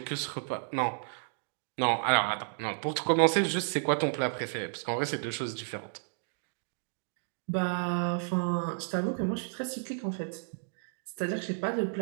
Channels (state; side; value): silent; left; digital silence